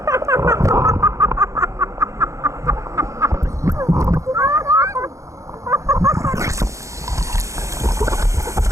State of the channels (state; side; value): late; left; 0.15 ms